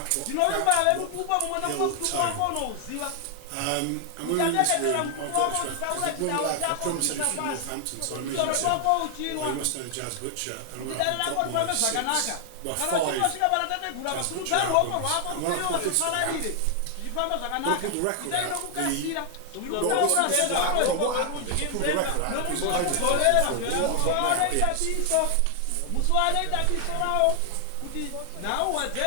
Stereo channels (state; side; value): different; both; correlation 0.00